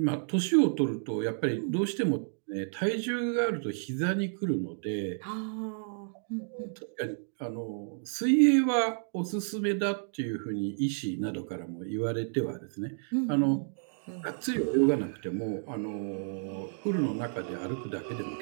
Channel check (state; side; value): silent; left; digital silence